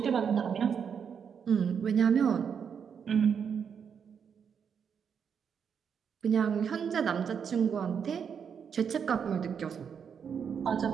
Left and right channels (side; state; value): left; quieter; 7.1 dB